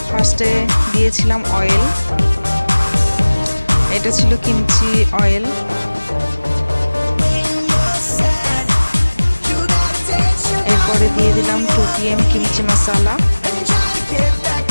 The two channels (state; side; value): inverted; both; correlation -1.00